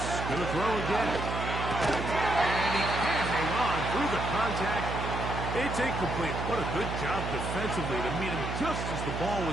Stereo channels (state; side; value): noise; right; hum, 4 dB below the sound